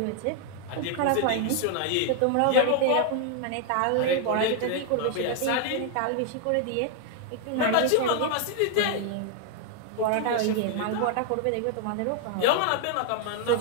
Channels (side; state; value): both; different; correlation 0.00